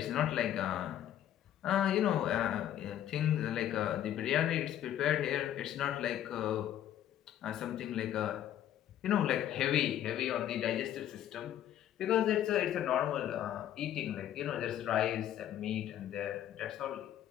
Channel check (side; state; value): right; quieter; 11.3 dB